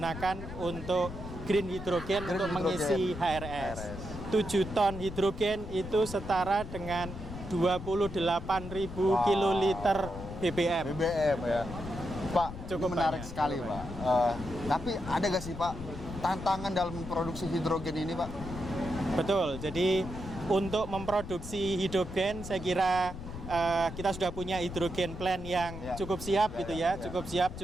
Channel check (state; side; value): noise; left; rumble, 10 dB below the sound